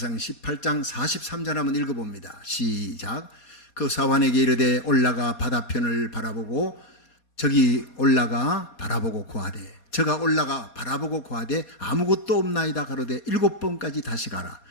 18장 43절 한번 읽어봅니다. 시작. 그 사환에게 이르되 올라가 바다편을 바라보고 저기 올라가 바라보고 고하되 저가 올라가 바라보고 고하되 아무것도 없나이다 가로되 7번까지 다시 가라.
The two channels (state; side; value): late; right; 4.2 ms